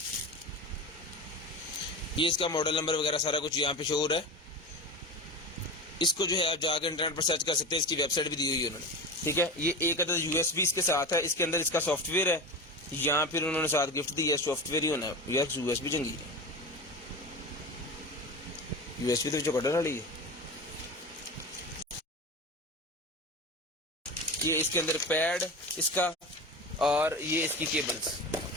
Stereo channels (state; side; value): normal; both; correlation 0.27